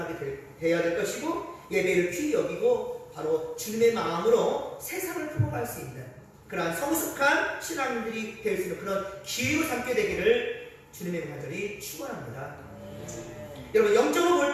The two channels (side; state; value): both; identical; correlation 1.00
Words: 돼야 될 것이고, 예배를 귀히 여기고 바로 주님의 마음으로 세상을 품어갈 수 있는 그러한 성숙한 신앙인들이 될 수 있는 그런 기회로 삼게 되기를 주님의 간절히 축원합니다. 여러분, 영적으로